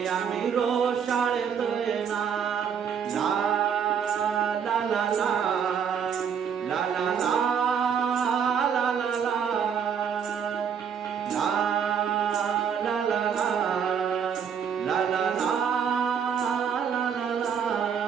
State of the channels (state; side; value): quieter; left; 7.4 dB